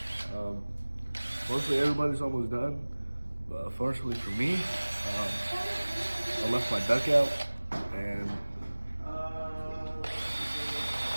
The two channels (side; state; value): both; inverted; correlation -1.00